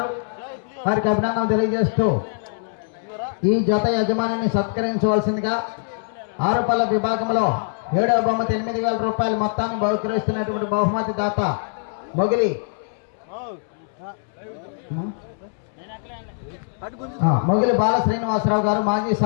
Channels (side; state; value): right; silent; 64 dB below the other